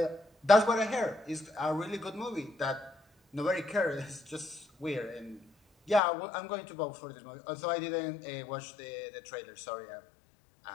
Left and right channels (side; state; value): right; drops out; at 6.0 s